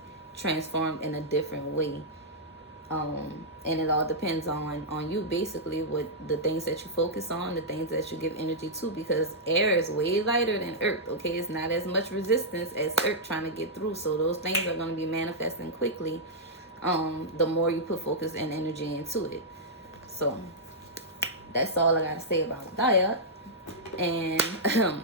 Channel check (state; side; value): normal; both; correlation -0.09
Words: transformed in a different way. And it all depends on you, basically, what the things that you focus on, the things that you give energy to, because air is way lighter than earth. Okay, it's not as much resistance as earth trying to get through, so those things are going to be manifesting quickly the more you put focus and energy into it. So that's all I got to say about that. And